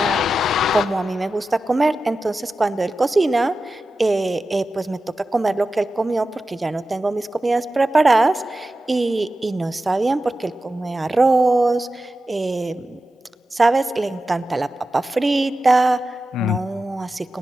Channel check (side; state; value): both; normal; correlation 0.93